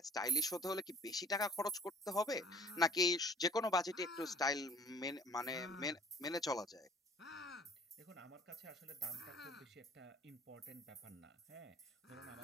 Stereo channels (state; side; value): normal; both; correlation 0.53